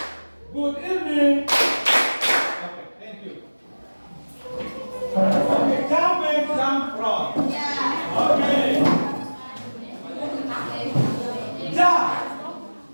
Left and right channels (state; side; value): inverted; both; correlation -1.00